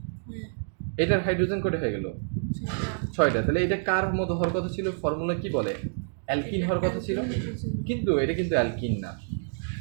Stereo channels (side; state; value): left; silent; digital silence